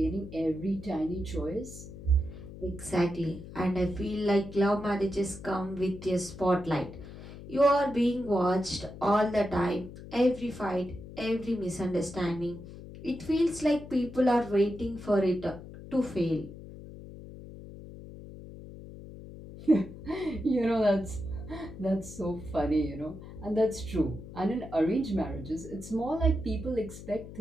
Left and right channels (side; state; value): left; noise; hum, 14 dB below the sound